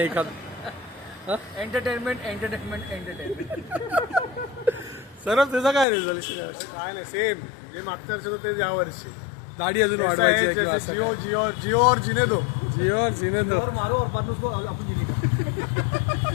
Entertainment entertainment entertainment. सर त्याचा काय रिझोल्युशन आहे? काय नाही सेम जे मागच्या वर्षी होतं ते या वर्षी दाढी अजून वाढवायची आहे किंवा असं जिओ काय? जिओ जिओ और जिने दो. जिओ और जीने दो. मारो और बाद में उसको अपन जीने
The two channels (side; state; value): right; drops out; at 5.9 s